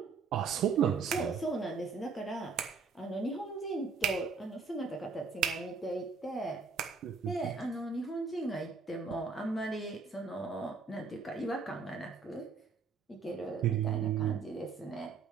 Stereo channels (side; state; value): left; quieter; 5.0 dB